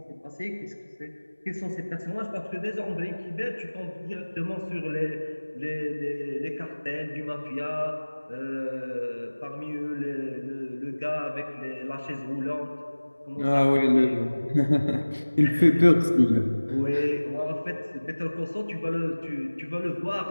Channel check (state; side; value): inverted; both; correlation -1.00